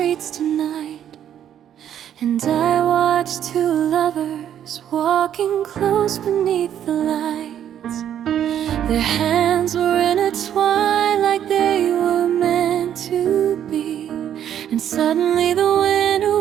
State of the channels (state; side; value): quieter; left; 10.1 dB